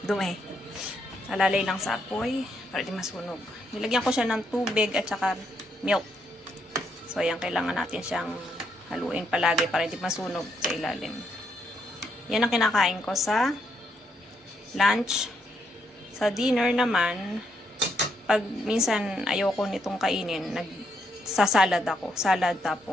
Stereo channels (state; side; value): normal; both; correlation 0.76